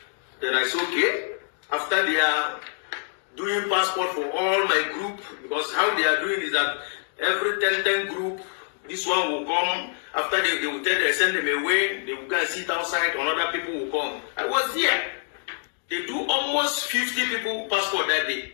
Then I said, okay. After they are doing passport for all my group, because how they are doing is that every 10 group, this one will come. After they will tell they send them away, they will go and sit outside, another people will come. I was there. They do almost 50 people passport that day.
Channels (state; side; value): silent; right; 61 dB below the other